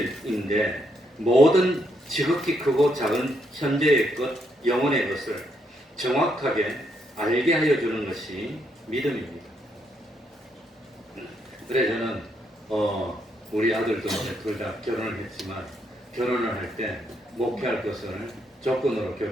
모든 지극히 크고 작은 현재의 것, 영혼의 것을 정확하게 알게 하여 주는 것이 믿음입니다. 그래 저는 우리 아들도 둘 다 결혼을 했지만 결혼을 할 때 목회할 것을 조건으로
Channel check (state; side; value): normal; both; correlation 0.76